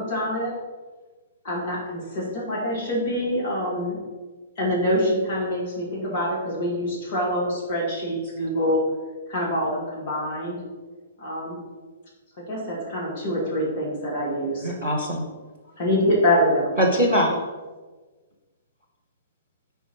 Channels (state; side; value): inverted; both; correlation -0.32